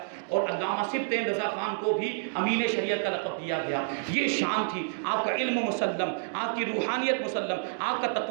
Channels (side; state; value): left; silent; digital silence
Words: اور علامہ سبطین رضا خان کو بھی امین شریعت کا لقب دیا گیا۔ یہ شان تھی، آپ کا علم مسلم، آپ کی روحانیت مسلم، آپ کا